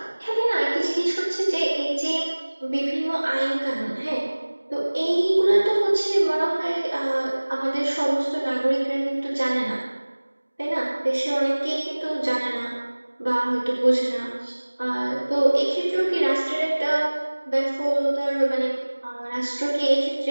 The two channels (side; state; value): both; inverted; correlation -1.00